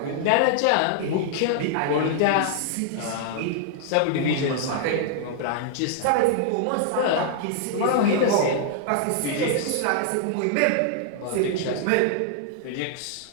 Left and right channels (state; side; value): different; both; correlation -0.01